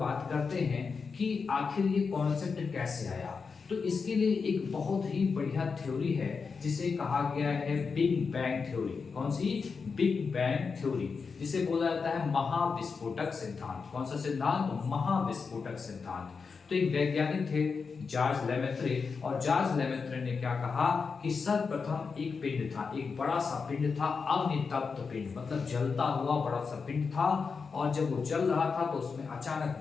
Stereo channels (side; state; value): right; quieter; 5.2 dB